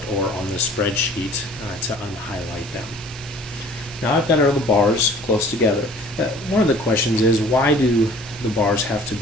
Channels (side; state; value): both; normal; correlation 0.50